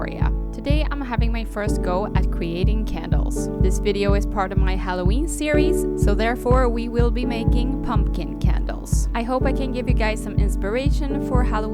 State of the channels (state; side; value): identical; both; correlation 1.00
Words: Today I'm having my first go at creating candles. This video is part of my Halloween series, so therefore we will be making pumpkin candles. I hope I can give you guys some inspiration for